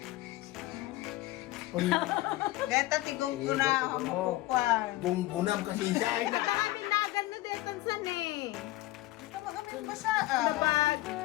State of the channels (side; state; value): right; quieter; 17.7 dB